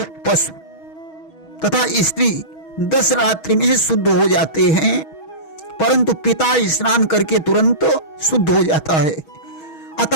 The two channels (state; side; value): late; right; 6.3 ms